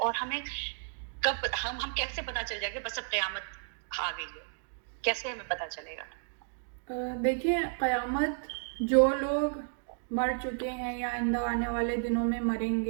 ہمیں کب ہم کیسے پتہ چل جائے گا بس اب قیامت آ گئی ہے، کیسے ہمیں پتہ چلے گا؟ دیکھیں، قیامت جو لوگ مر چکے ہیں یا آئندہ آنے والے دنوں میں مریں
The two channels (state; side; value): silent; left; digital silence